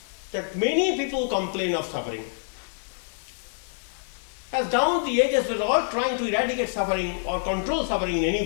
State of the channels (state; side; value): silent; right; 61 dB below the other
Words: that many people complain of suffering. As down the ages, we're all trying to eradicate suffering or control suffering in